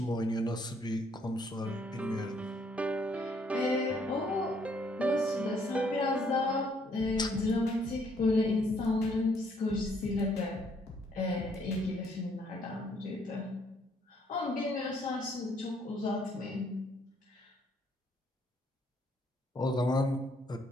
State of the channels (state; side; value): normal; both; correlation 0.67